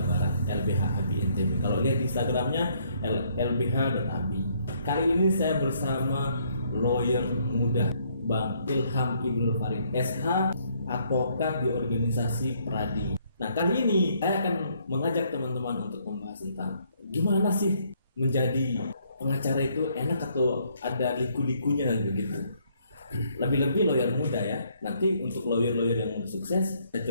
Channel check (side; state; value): both; inverted; correlation -0.68